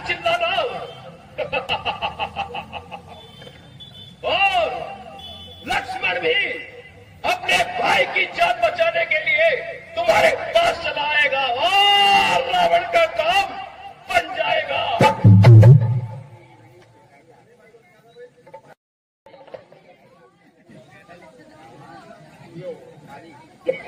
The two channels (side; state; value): both; identical; correlation 1.00